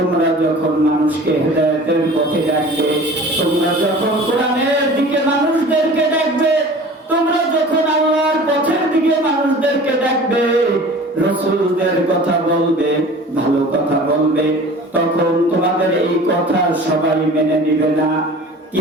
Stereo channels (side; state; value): both; normal; correlation 0.42